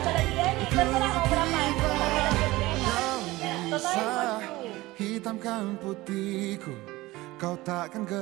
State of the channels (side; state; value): left; quieter; 19.3 dB